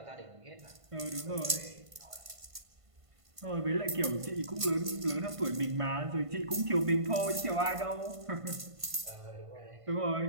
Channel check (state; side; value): late; left; 1.5 ms